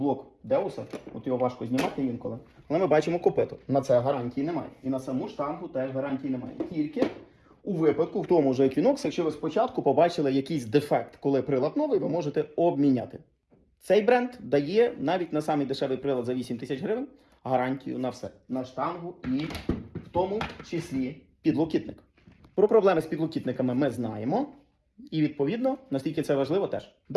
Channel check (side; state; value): both; identical; correlation 1.00